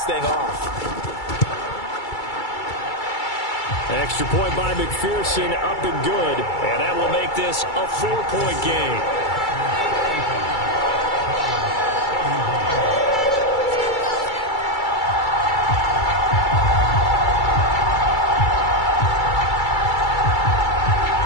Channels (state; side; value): late; right; 2.3 ms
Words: thing off. Extra point by McPherson, up and good. And that will make this a 4-point game.